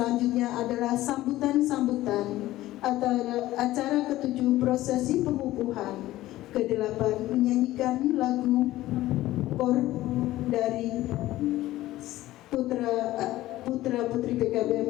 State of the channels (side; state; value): right; quieter; 15.9 dB